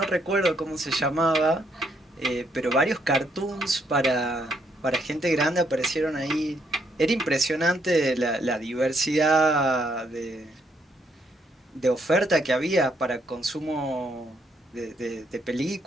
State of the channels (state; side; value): normal; both; correlation 0.73